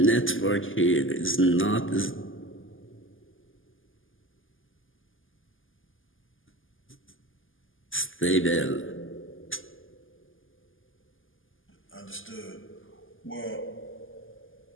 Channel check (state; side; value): late; right; 0.58 ms